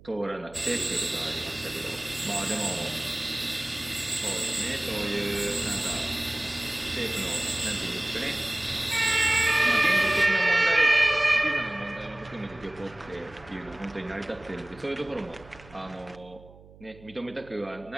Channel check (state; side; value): noise; right; hum, 22 dB below the sound